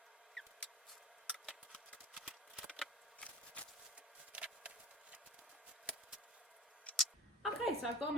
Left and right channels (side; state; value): both; normal; correlation 0.37